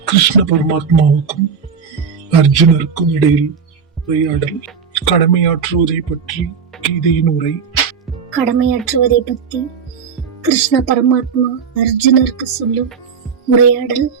கிருஷ்ண பரமாத்மாவுக்கும் அர்ஜுனருக்கும் இடையில் உரையாடல். கடமையாற்றுவதை பற்றி கீதையின் உரை. கடமையாற்றுவதை பற்றி கிருஷ்ண பரமாத்மா அர்ஜுனருக்கு சொல்லும் உரையாடல்.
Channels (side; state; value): left; quieter; 6.3 dB